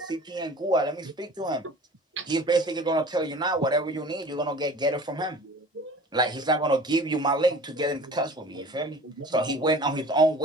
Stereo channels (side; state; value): both; normal; correlation 0.43